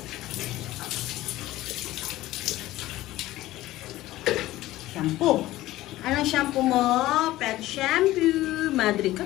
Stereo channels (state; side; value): quieter; right; 16.4 dB